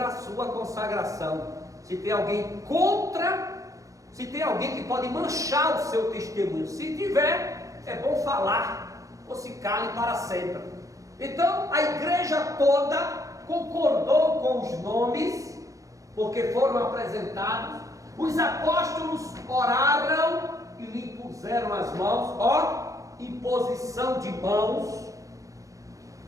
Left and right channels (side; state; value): left; late; 0.16 ms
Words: a sua consagração, se tem alguém se tem alguém que pode manchar o seu testemunho, se tiver, é bom falar, ou se cale para sempre. Então a igreja toda concordou com os nomes, porque foram apresentados. Os apóstolos oraram e lhe puseram as mãos, imposição de mãos,